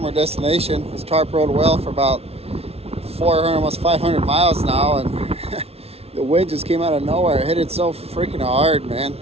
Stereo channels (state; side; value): late; left; 0.30 ms